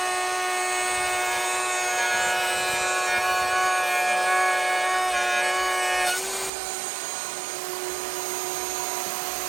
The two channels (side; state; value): left; drops out; at 6.5 s